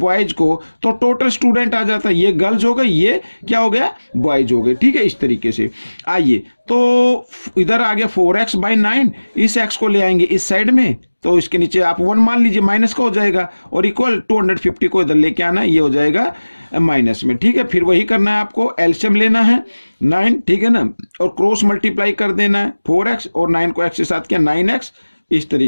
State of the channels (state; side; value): inverted; both; correlation -1.00